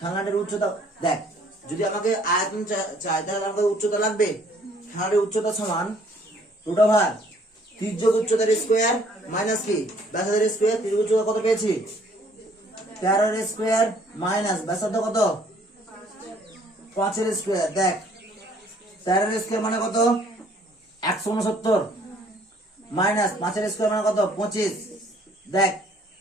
উচ্চতা দেখ, যদি আমাকে আয়তন চাই তাহলে আমাকে উচ্চতা লাগবে, খেলনাটির উচ্চতা সমান রুট ওভার তির্যক উচ্চতার স্কয়ার মাইনাস কি ব্যাসার্ধের স্কয়ার। তির্যক উচ্চতা কত পেয়েছি 13 এর স্কয়ার মাইনাস ব্যাসার্ধ কত 5 এর স্কয়ার। দেখ 13 এর স্কয়ার মানে কত 169 মাইনাস 5 এর স্কয়ার মানে কত 25। দেখ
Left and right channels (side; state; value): both; normal; correlation 0.60